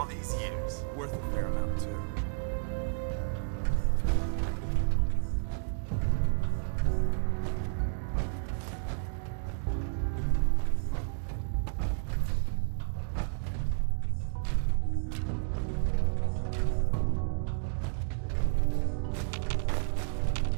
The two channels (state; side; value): silent; left; digital silence